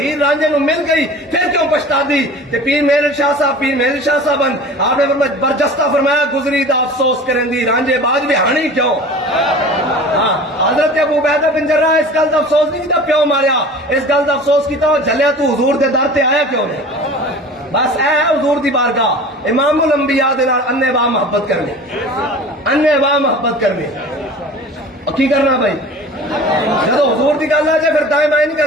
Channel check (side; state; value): both; normal; correlation 0.40